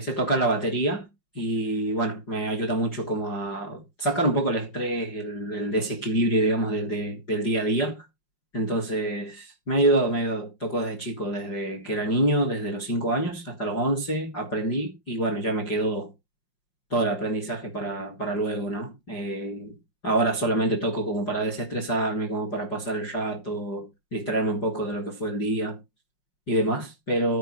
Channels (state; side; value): late; right; 5.5 ms